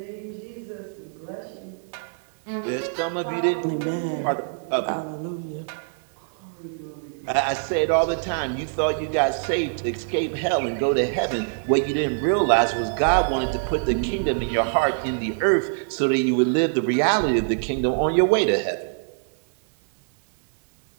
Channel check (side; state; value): left; silent; digital silence